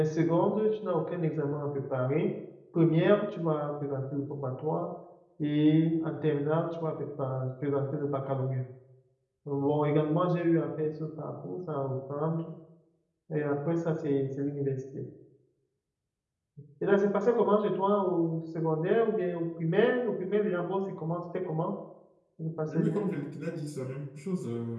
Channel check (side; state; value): both; identical; correlation 1.00